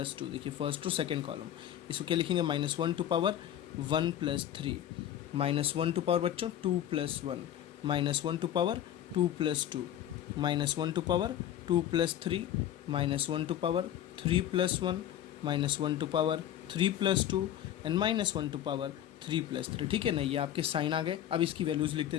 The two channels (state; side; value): quieter; right; 11.3 dB